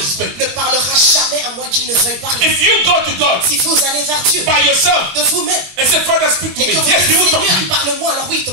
to speak. ne parlera jamais à moins qu'il ne veuille parler. If you go to God Si vous allez vers Dieu by yourself de vous-même and say, Father, speak to et me, que vous yes, he dites will talk to Seigneur, you. parle-moi, alors oui, il te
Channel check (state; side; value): late; left; 22 ms